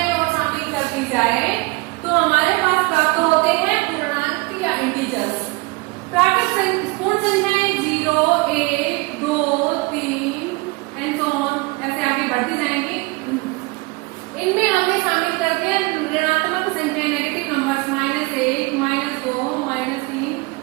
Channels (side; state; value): left; quieter; 24.7 dB